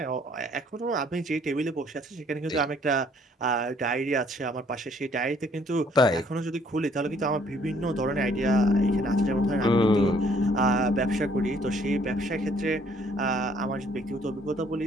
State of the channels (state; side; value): normal; both; correlation 0.63